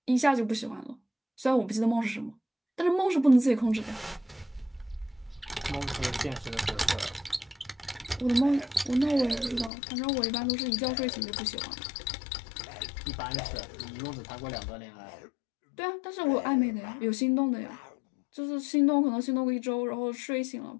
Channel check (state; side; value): drops out; right; at 9.7 s